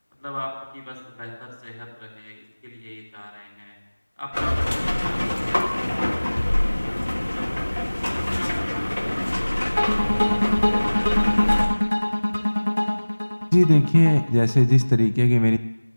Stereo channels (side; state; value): both; inverted; correlation -1.00